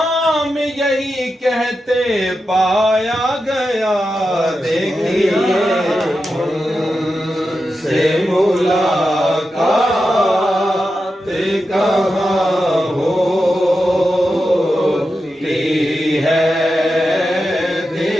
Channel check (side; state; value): both; normal; correlation 0.89